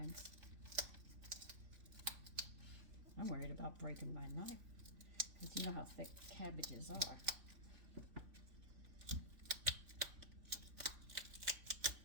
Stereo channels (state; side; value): late; left; 3.5 ms